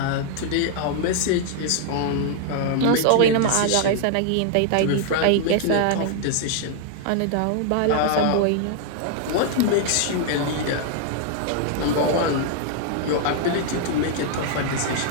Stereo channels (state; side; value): different; both; correlation 0.00